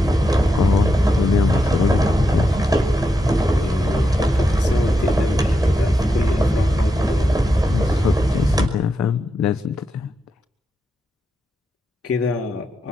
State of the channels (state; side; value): normal; both; correlation 0.85